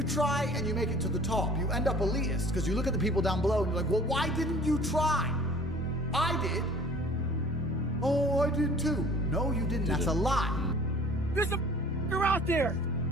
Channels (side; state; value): both; normal; correlation 0.49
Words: try and you make it to the top, you end up elitist, because you look at the people down below and you're like, well, why didn't you try? I did. Oh, I did too. No, you didn't. That's a lie. There's a f***er out there